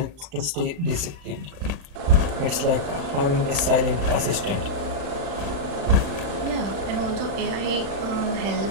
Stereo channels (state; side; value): late; left; 35 ms